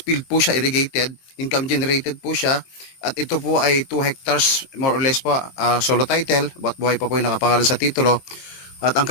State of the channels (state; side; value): late; right; 23 ms